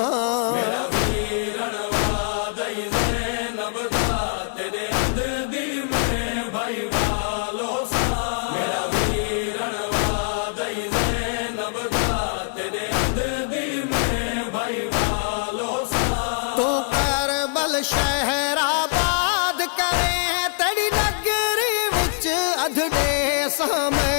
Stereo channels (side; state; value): right; silent; 63 dB below the other